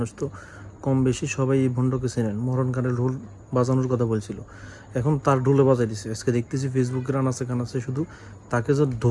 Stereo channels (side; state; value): both; identical; correlation 1.00